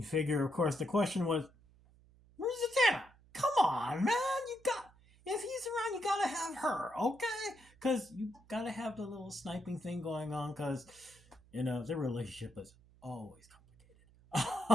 figure, of course, the question was, "Where's Zatanna? Come on, man! If he's around, you gotta have her, okay? Because you gotta have the little sniping thing going on. Because their relationship is always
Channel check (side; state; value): right; noise; hum, 27 dB below the sound